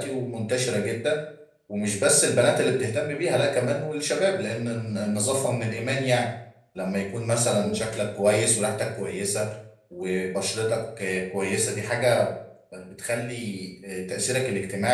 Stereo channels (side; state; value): both; identical; correlation 1.00